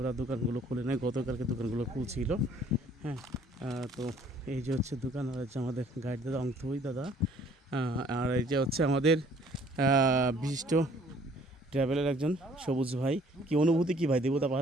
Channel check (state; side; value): normal; both; correlation 0.58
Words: দোকানগুলো খুলে নেয়, গতকালকে দোকানগুলো খুলছিল। হ্যাঁ, তো এই যে হচ্ছে দোকান, আর হচ্ছে আমাদের গাইড দাদা অংথই দাদা, আর এই যে হচ্ছে আমাদের বিশিষ্ট ট্রাভেলের একজন সবুজ ভাই। কি অনুভূতি কি ভাই দেবতা